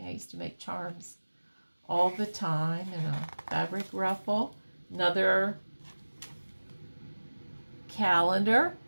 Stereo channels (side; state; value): both; inverted; correlation -1.00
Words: I used to make charms all the time in a fabric ruffle. Another calendar